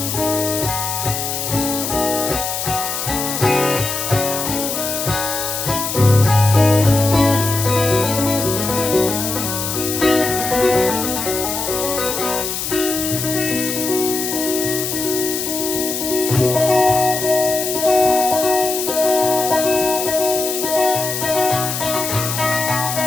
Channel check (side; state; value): left; noise; hiss, 3 dB below the sound